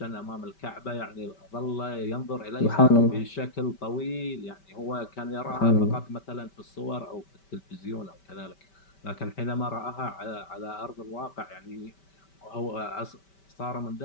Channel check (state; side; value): late; right; 5.2 ms